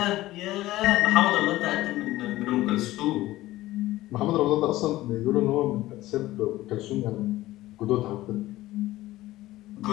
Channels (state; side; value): quieter; right; 16.6 dB